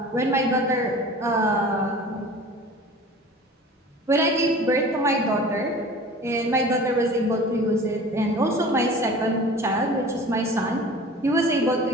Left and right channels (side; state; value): both; normal; correlation 0.41